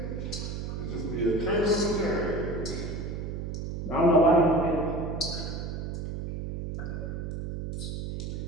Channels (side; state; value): right; noise; hum, 5 dB below the sound